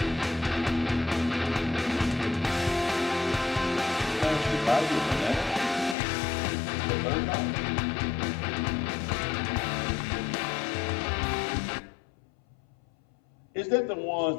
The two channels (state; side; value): drops out; right; at 6.0 s